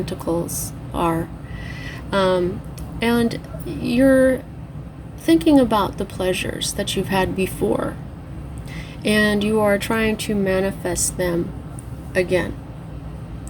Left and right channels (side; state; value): both; identical; correlation 1.00